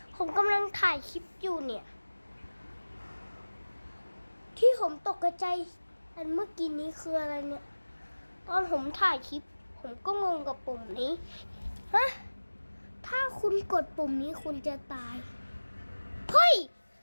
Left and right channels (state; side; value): inverted; both; correlation -1.00